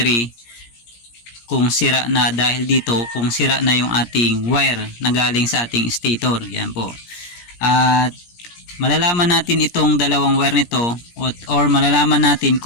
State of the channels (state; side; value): late; right; 17 ms